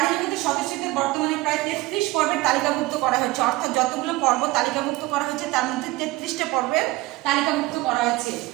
জগতের সদস্যদের বর্তমানে প্রায় 33 পর্বের তালিকাভুক্ত করা হয়েছে। অর্থাৎ যতগুলো পর্ব তালিকাভুক্ত করা হয়েছে তার মধ্যে 33টা পর্বের তালিকাভুক্ত করা হয়েছে।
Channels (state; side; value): quieter; left; 19.6 dB